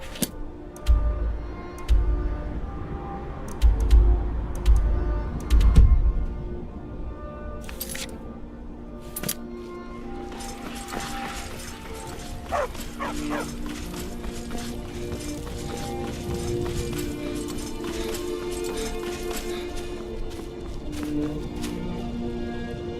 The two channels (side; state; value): both; identical; correlation 1.00